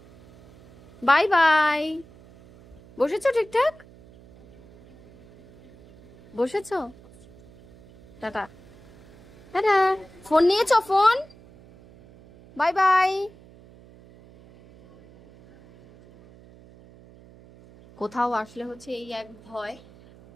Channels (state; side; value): noise; right; hum, 24 dB below the sound